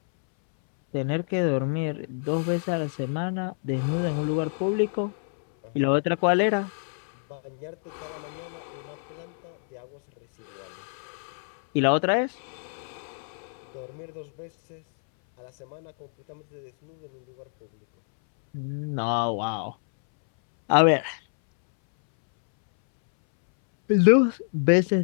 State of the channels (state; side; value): silent; right; 60 dB below the other